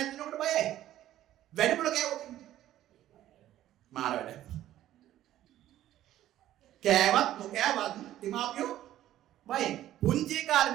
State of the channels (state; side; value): quieter; left; 13.1 dB